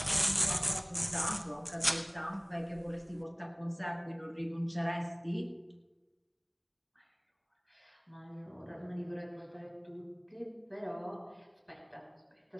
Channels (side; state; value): both; identical; correlation 1.00